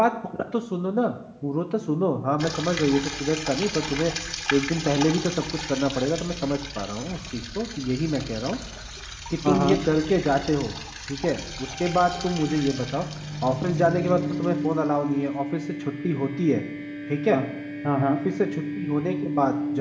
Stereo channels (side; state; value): both; identical; correlation 1.00